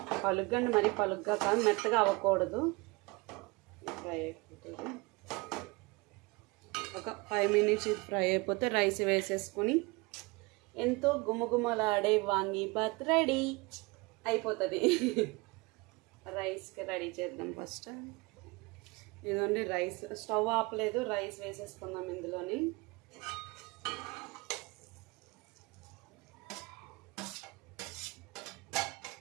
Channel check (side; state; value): left; quieter; 25.4 dB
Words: పలుగ్గా అంటే మరి పలుగ్గా కాదు, మెత్తగా అవ్వకూడదు. ఫ్రై అయిపోతుంది. ఒక 5 మినిట్స్ ఫ్రై అయిపోతే రైస్ వేసేసుకొని ఎంతో గుమగుమలాడే వాంగీబాత్ రెడీ అయిపోతుంది. రైస్కి రెడీ చేద్దాం ఫస్ట్. ఇదండి రైస్. స్టవ్ ఆపలేదు, రైస్ వేసేసుకుందాం ఇందులోని.